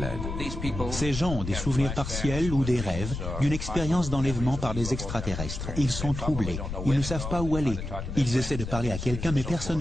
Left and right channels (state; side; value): noise; left; rumble, 6 dB below the sound